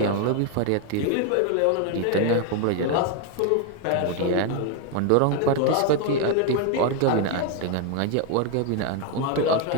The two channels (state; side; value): different; both; correlation 0.01